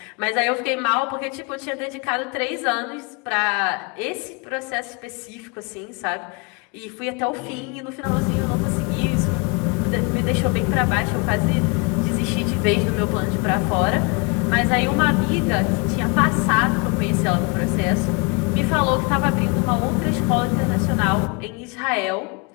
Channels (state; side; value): quieter; right; 30.5 dB